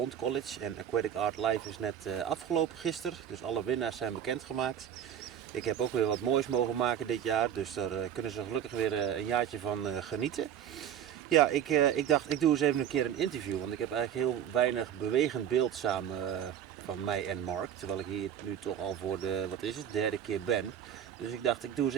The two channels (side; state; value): left; quieter; 9.5 dB